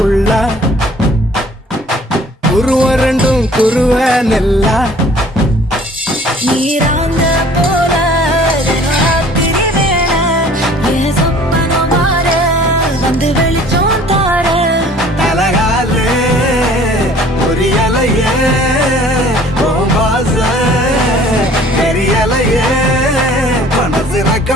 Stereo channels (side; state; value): both; normal; correlation 0.52